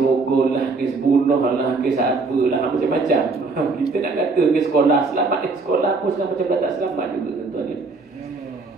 lah, kes bunuh lah, kes apa lah, macam-macam. Kita nak kata kes sekolah selamat, sekolah pun sekarang macam tak selamat juga, tuan-tuan.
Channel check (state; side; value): quieter; left; 4.0 dB